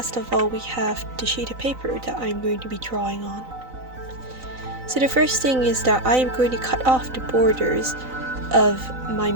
of all, we have the sheet of paper that I'm going to be drawing on. So the first thing is that I am going to cut off the borders of my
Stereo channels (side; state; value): left; late; 3.9 ms